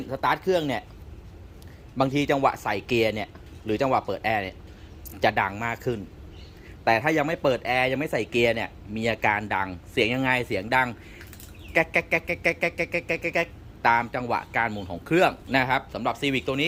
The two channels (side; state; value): both; identical; correlation 1.00